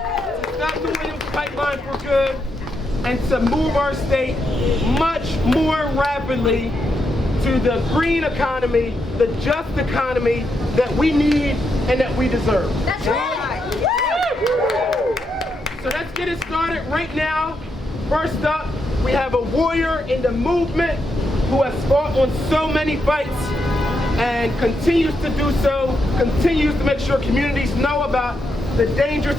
stop the Williams pipeline for good and to move our state much more rapidly to the green economy, the just economy that we need and that we deserve. That's right. So let's get it started right now. First up, we have a warrior in the movement who has fought on so many fights and continues to do so, continues to make sure communities know about the dangers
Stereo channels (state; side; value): normal; both; correlation 0.82